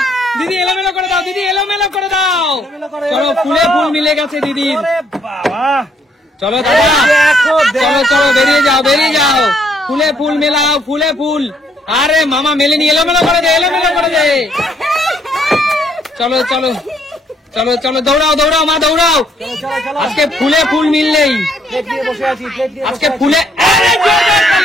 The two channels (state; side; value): normal; both; correlation 0.69